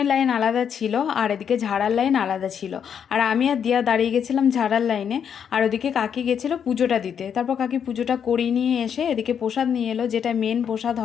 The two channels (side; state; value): right; quieter; 7.9 dB